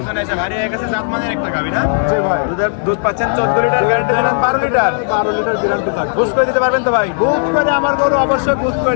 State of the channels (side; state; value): right; silent; digital silence